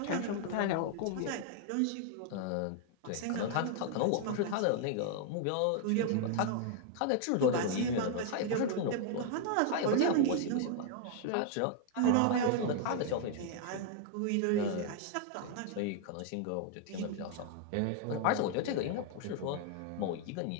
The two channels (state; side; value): different; both; correlation 0.00